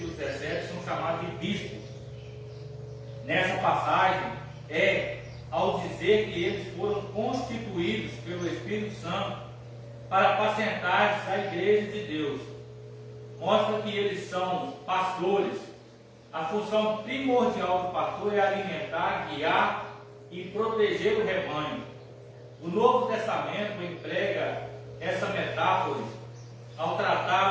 17 são chamados de bispos. Nessa passagem, ao dizer que eles foram constituídos pelo Espírito Santo para apacentar a igreja de Deus, mostra que eles são pastores. A função primordial do pastor é alimentar, guiar e proteger o rebanho. O Novo Testamento emprega essa metáfora ao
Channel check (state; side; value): identical; both; correlation 1.00